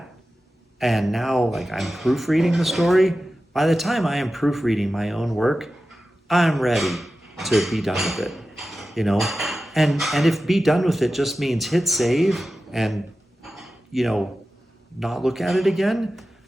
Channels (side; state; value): both; normal; correlation 0.94